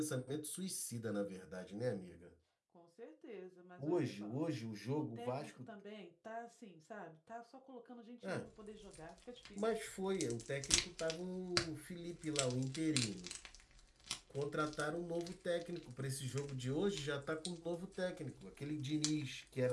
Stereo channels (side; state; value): both; identical; correlation 1.00